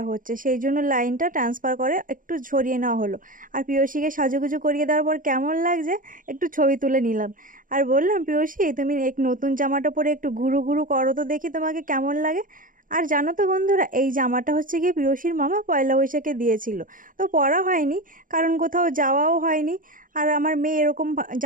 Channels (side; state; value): left; late; 0.39 ms